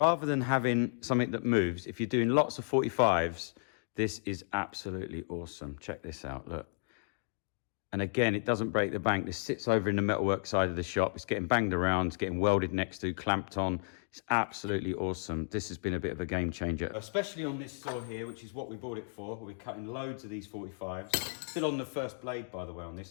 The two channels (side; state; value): right; silent; digital silence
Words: than having something that moves, if you're doing lots of 45s, this is absolutely awesome. Check this out, look. And again, it doesn't break the bank. This sits over in the metalwork side of the shop. It's getting banged around, it's getting welded next to, clamped on. It's absolutely awesome. This has been a bit of a game changer, especially on this saw here, which is what we bought it for. We're cutting loads of these 45s. Still on the first blade, by the way, on